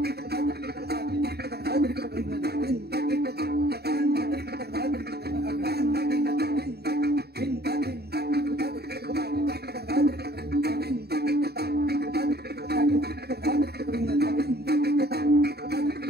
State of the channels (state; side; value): late; left; 0.47 ms